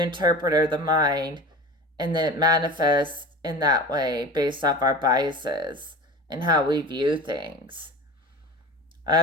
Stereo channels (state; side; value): normal; both; correlation 0.35